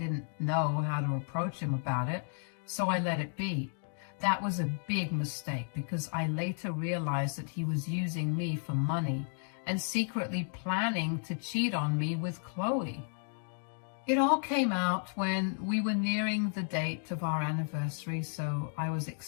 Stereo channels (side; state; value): right; silent; 56 dB below the other